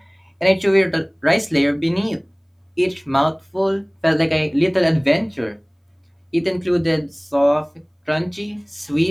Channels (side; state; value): both; identical; correlation 1.00